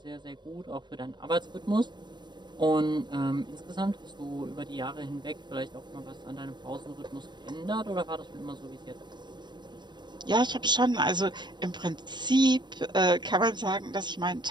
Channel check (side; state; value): left; late; 0.21 ms